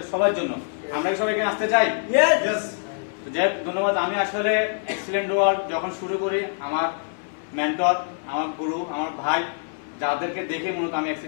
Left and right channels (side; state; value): right; silent; 62 dB below the other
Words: সবার জন্য। আমরা কি সবাই এখানে আসতে চাই? তো যাই হোক, ধন্যবাদ। আমি আসলে এক্সিলেন্ট ওয়ার্ল্ড যখন শুরু করি, আমার মেন্টর, আমার গুরু, আমার ভাই, যাদেরকে দেখে মূলত আমি